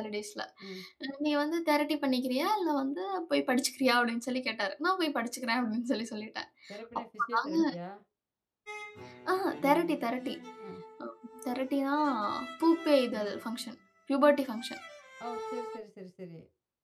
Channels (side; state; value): both; identical; correlation 1.00